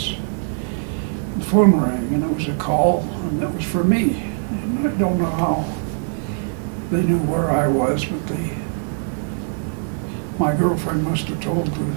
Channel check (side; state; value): left; silent; digital silence